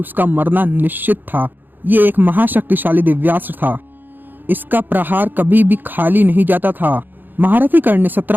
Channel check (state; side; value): late; left; 0.091 ms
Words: मरना निश्चित था। ये एक महाशक्तिशाली दिव्यास्त्र था। इसका प्रहार कभी भी खाली नहीं जाता था। महारथी कर्ण ने